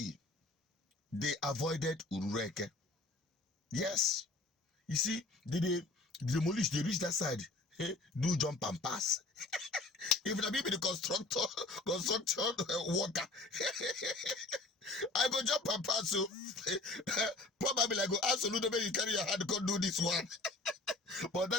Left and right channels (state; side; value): quieter; right; 3.0 dB